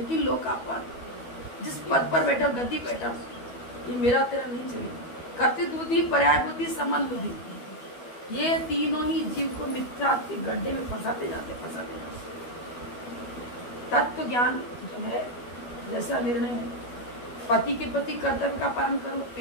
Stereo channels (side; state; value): right; late; 12 ms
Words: लोकापद, जिस पद पर बैठा, गद्दी बैठा, ये मेरा तेरा नहीं चलेगा। कर्तव्य बुद्धि, पर्याय बुद्धि, संबंध बुद्धि, ये तीनों ही जीव को मिथ्या के गड्ढे में फंसाते जाते। तत्व ज्ञान जो है, जैसा निर्णय है, पति के प्रति कर्तव्य का पालन करो,